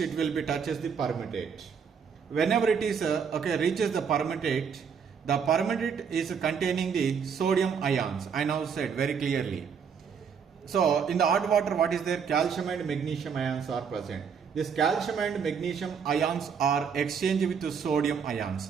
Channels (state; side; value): quieter; left; 6.7 dB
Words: will be touches the permutate. Whenever it is reaches the permutate is containing the sodium ions. I now said very clearly. So in the odd water, what is there? Calcium and magnesium ions are present. This calcium and magnesium ions are exchanged with the sodium ions.